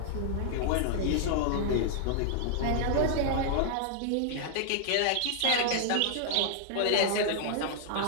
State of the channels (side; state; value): both; different; correlation -0.01